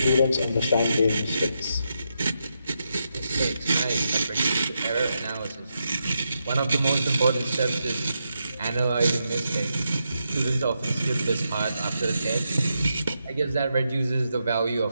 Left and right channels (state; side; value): inverted; both; correlation -0.84